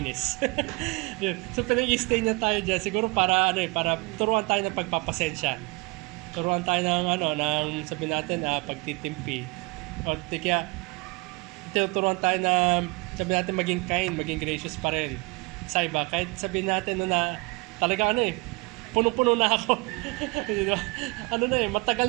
So, pinag-i-stay niya tayo dyan, siguro para turuan tayo ng pagpapasensya. Turuan tayo ng sabi natin, pagtitimpi. O, kaya, tinuturuan tayo na, sabi natin, maging kind, maging gracious pa rin. Sa iba, kahit sabi natin na talaga punong-puno na ako. Matagal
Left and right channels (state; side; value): quieter; left; 26.2 dB